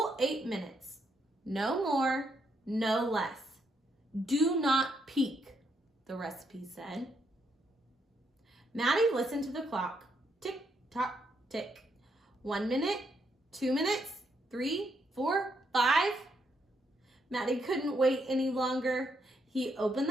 8 minutes. No more, no less. Do not peek, the recipe said. Maddie listened to the clock. Tick, tock, tick. 1 minute, 2 minutes, 3, 4, 5. Maddie couldn't wait any longer. He opened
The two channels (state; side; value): normal; both; correlation 0.76